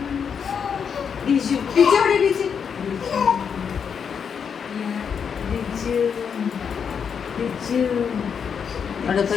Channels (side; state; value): right; quieter; 6.9 dB